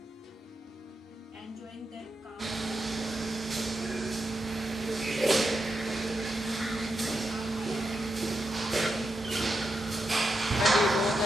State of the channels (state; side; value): normal; both; correlation 0.86